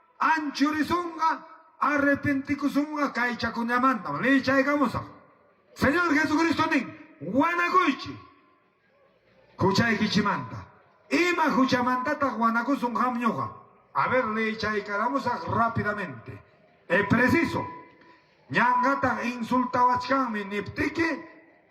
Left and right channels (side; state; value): both; identical; correlation 1.00